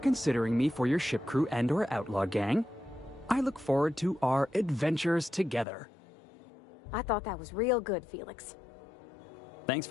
me for your ship crew and/or outlaw gang. I look forward to our adventures together. I thought that was real good, Felix. Thanks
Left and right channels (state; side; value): drops out; right; at 5.7 s